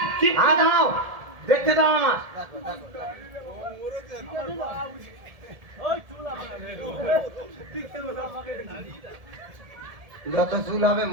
হ্যাঁ দাঁড়াও দেখতে দাও আমার যত চুল হবে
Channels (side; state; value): left; late; 1.7 ms